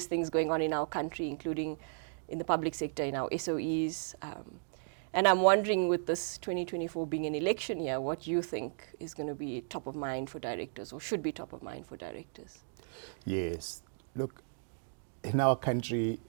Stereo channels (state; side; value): silent; left; digital silence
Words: things going on in our country, including in the public sector, in our SOEs. And I'm wondering, with this 2024 being an election year, what you think is going to be top of mind for directors, or should be top of mind for directors? Yes, look, in our country,